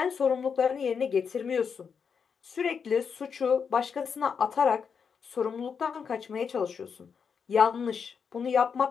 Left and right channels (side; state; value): right; quieter; 6.3 dB